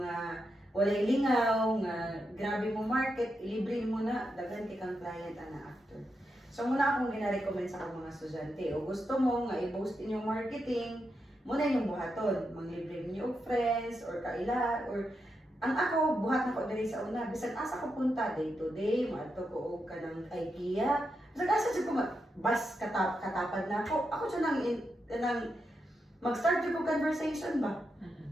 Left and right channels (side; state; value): both; normal; correlation 0.85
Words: walay lingaw nga grabe mo market, ilibre mo na daghan kay kang client ana after. So muna akong gina-recommend sa akong mga estudyante. O gusto mo nga i-boost inyong marketing, muna inyong buhaton. Manglibre niyo og friends, or kaila, or ang ako, buhat na ko diri sa una. Bisan asa ko punta, day to day, maato ko og kanang IKEA. Bisan asa siya ko bus katapad na ako. Ako siya nang mag-start ko conversation ba?